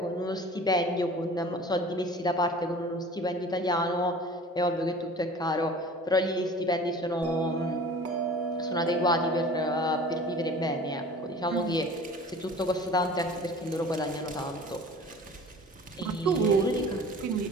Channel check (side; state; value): both; normal; correlation 0.43